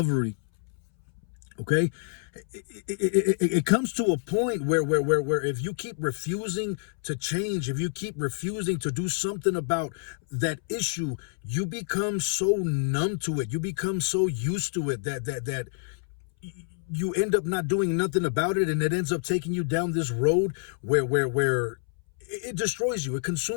Okay? It comes to a point where if you keep refusing to change, if you keep refusing to do something about that issue, you become so numb to it. You become so used to it that you end up not doing nothing about it, and it ends up taking you down this road where it destroys you. It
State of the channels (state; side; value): silent; right; 60 dB below the other